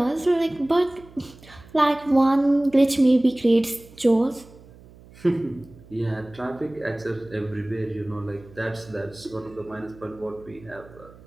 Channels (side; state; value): right; noise; hum, 23 dB below the sound